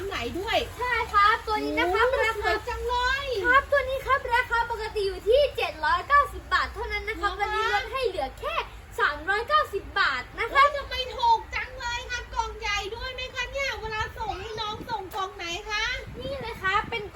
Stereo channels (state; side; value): identical; both; correlation 1.00